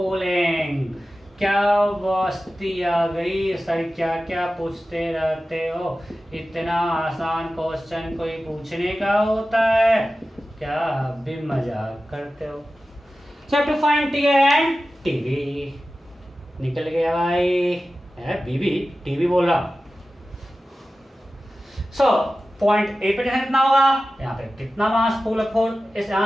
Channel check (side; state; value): both; normal; correlation 0.95